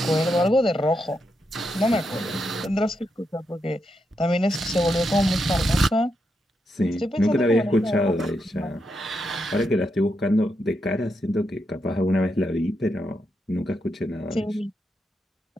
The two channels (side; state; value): both; normal; correlation 0.83